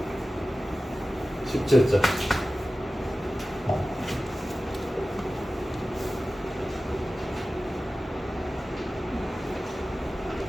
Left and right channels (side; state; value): both; normal; correlation 0.95